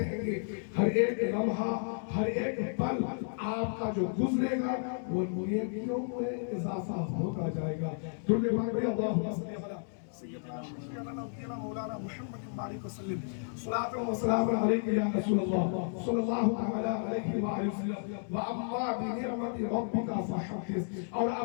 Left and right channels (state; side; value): silent; right; digital silence